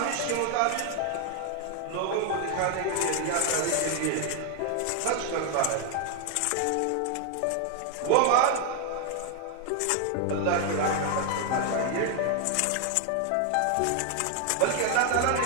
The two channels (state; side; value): different; both; correlation 0.00